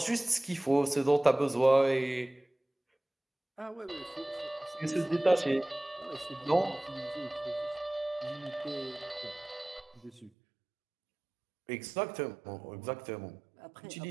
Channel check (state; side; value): drops out; left; at 10.3 s